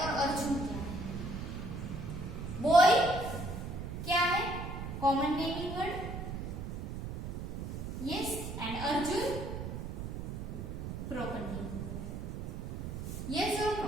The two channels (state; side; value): noise; right; rumble, 6 dB below the sound